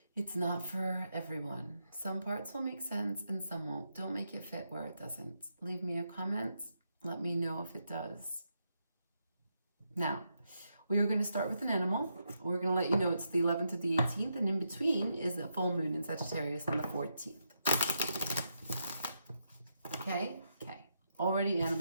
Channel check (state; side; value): inverted; both; correlation -0.82